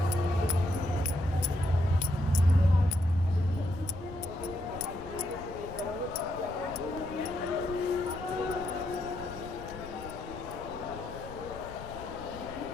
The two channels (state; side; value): noise; left; rumble, 14 dB below the sound